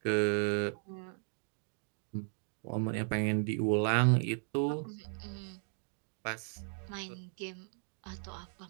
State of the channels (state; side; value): silent; left; 54 dB below the other